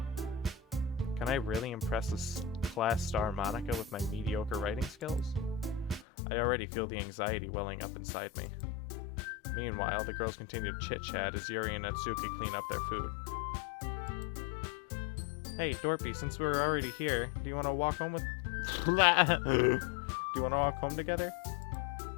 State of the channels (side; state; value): right; drops out; at 6.1 s